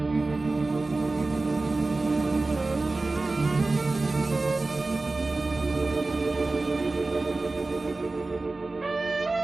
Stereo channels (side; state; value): left; quieter; 3.3 dB